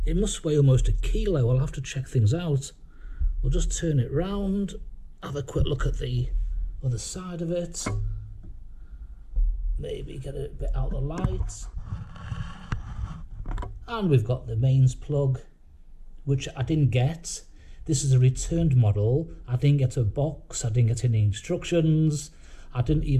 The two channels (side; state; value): both; identical; correlation 1.00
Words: It must weigh almost a kilo. I'll have to check things out. We'll just turn it round, have a quick look at the other side of it. Maybe get it a bit out of the light. And we've got the mains plug, which I didn't get. This is a returned model. I didn't get a box, I didn't get any instructions, I didn't